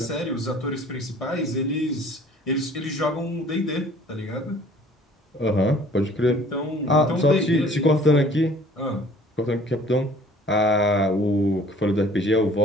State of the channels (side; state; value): both; normal; correlation 0.53